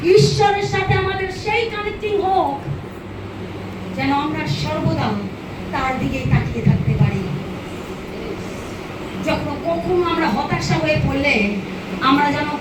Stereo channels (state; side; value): identical; both; correlation 1.00